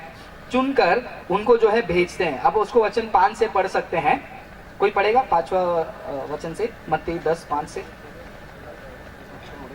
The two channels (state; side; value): identical; both; correlation 1.00